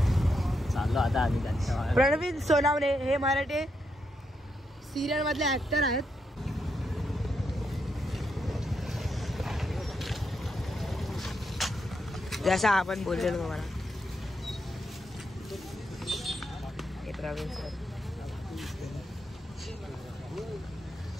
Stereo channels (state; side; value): normal; both; correlation 0.81